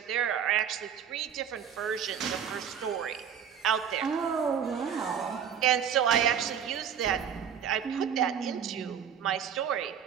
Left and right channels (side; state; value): left; quieter; 8.3 dB